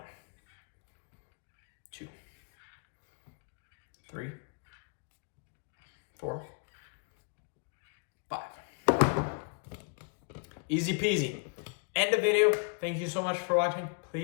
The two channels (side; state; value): right; quieter; 38.6 dB